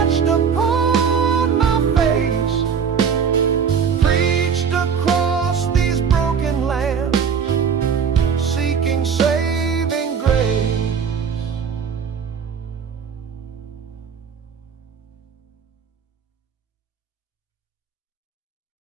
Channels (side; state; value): left; quieter; 6.8 dB